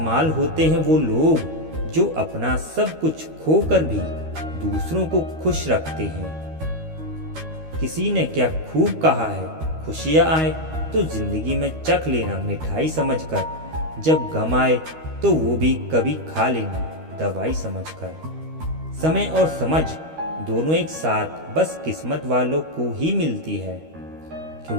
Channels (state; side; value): late; left; 13 ms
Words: होते हैं वो लोग जो अपना सब कुछ खोकर भी दूसरों को खुश रखते हैं। किसी ने क्या खूब कहा है, खुशियाँ आए तो जिंदगी में चख लेना मिठाई समझकर, जब गम आए तो वो भी कभी खा लेना दवाई समझकर। समय और समझ दोनों एक साथ बस किस्मत वालों को ही मिलती है,